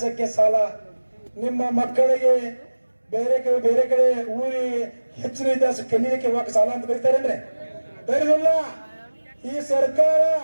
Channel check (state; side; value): inverted; both; correlation -1.00